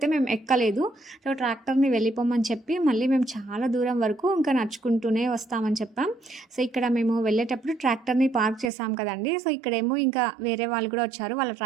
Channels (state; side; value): drops out; left; at 8.7 s